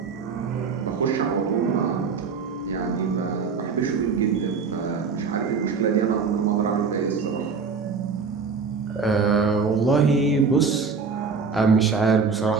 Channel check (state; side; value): quieter; left; 5.2 dB